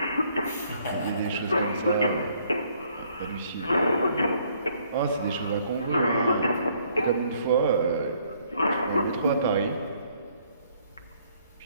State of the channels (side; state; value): both; inverted; correlation -0.65